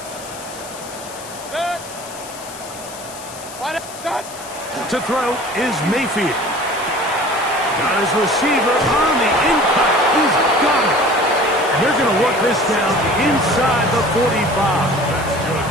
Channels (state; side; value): noise; left; hiss, 15 dB below the sound